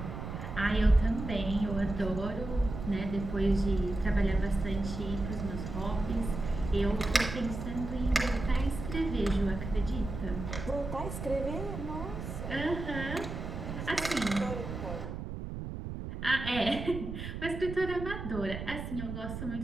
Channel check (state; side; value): noise; right; rumble, 7 dB below the sound